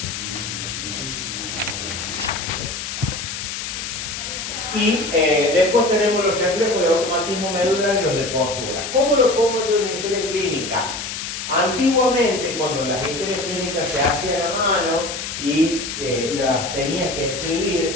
Y después tenemos los reflejos de automatismo medular y los de postura. ¿Cómo lo pongo yo en una historia clínica? Antiguamente, cuando las historias clínicas se hacían a mano y las tenías que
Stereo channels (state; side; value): noise; left; hiss, 6 dB below the sound